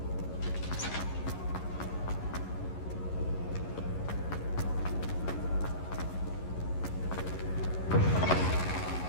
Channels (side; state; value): right; late; 11 ms